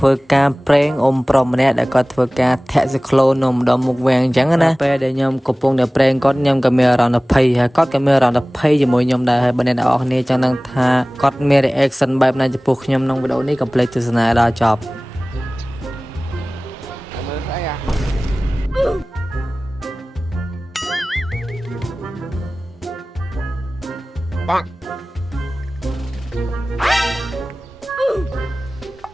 វើការប្រេងអ៊ំប្រុសម្នាក់ដែលគាត់ធ្វើការធាក់ស៊ីក្លូននំដល់មុខវាំងអញ្ចឹងណាពេលដែលខ្ញុំកំពុងតែប្រេងគាត់ខ្ញុំក៏មានអារម្មណ៍ភ័យហើយគាត់ក៏មានអារម្មណ៍ភ័យជាមួយខ្ញុំដែរហើយបើអ្នកនរគ្នាចង់ដឹងថាគាត់មាន reaction បែបណាចំពោះខ្ញុំក្នុងវីដេអូនេះកុំភ្លេចទស្សនាដល់ចប់ mơ thấy à băng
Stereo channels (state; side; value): normal; both; correlation 0.98